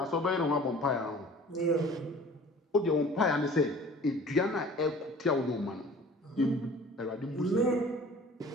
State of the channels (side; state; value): both; normal; correlation 0.47